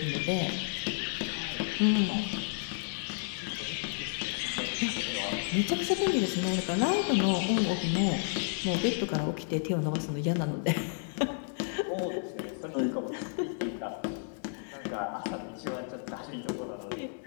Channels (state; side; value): silent; right; digital silence